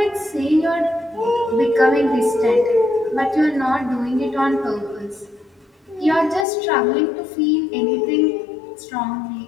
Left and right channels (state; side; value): drops out; right; at 6.5 s